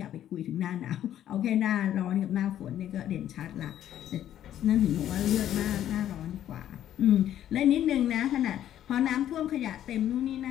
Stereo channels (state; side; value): quieter; right; 11.4 dB